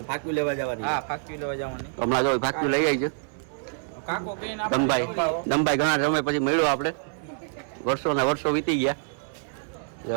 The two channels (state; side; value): silent; left; 61 dB below the other